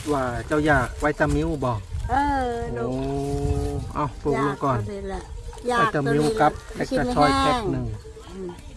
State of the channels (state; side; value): identical; both; correlation 1.00